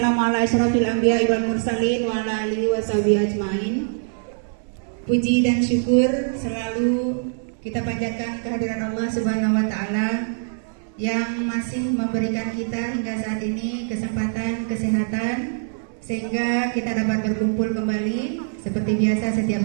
ala asyrofil anbiya'i wal mursalin wa ala alihi washabihi ajmain. Puji dan syukur selalu kita panjatkan kehadiran Allah Subhanahu wa taala yang masih memberikan kita hingga saat ini kesempatan kesehatan sehingga kita dapat berkumpul kembali seperti biasa setiap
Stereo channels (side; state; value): left; silent; digital silence